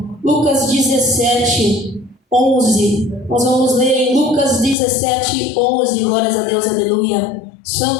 Lucas 17, 11. Nós vamos ler em Lucas 17, 11. Glórias a Deus, aleluia.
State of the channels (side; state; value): right; drops out; at 4.8 s